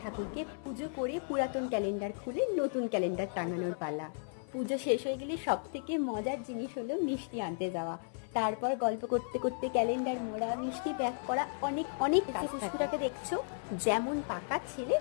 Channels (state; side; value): silent; right; 55 dB below the other